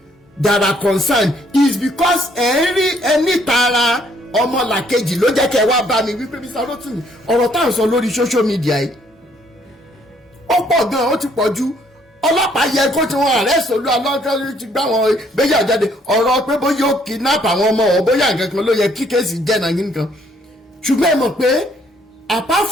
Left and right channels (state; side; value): normal; both; correlation 0.66